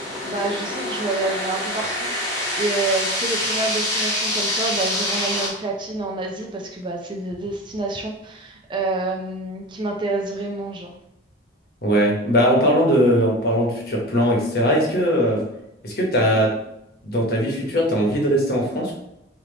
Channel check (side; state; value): both; normal; correlation 0.31